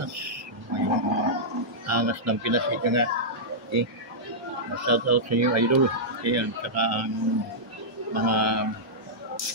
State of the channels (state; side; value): normal; both; correlation -0.11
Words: May angas ng Pinas ika nga. Okay. Shoutout sa inyo, idol. Okay, at saka ang mga